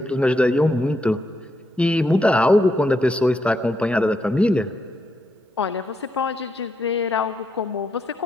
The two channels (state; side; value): normal; both; correlation 0.80